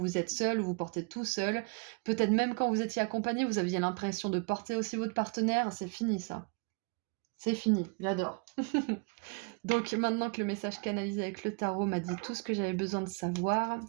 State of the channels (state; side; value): quieter; left; 34.1 dB